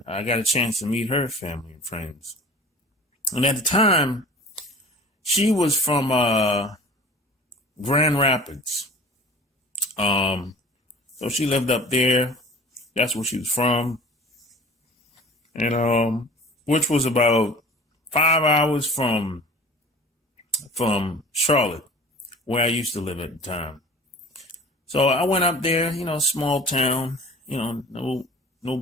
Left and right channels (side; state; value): both; normal; correlation 0.43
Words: I got a chance to meet her family and friends. And at the time, she was from Grand Rapids. So she lived up there. That's where she was from. And which was about 5 hours from Charlotte, where I used to live at the time. So I went up there, small town, no